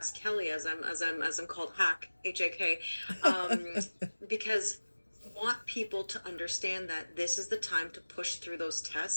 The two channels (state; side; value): inverted; both; correlation -1.00